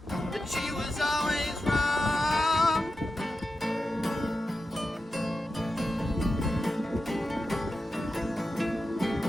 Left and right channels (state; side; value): normal; both; correlation 0.91